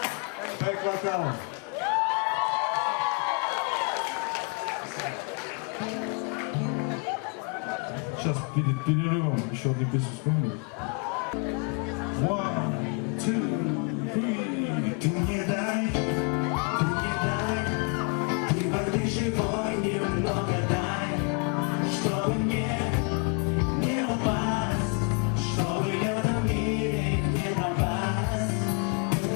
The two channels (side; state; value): right; quieter; 34.0 dB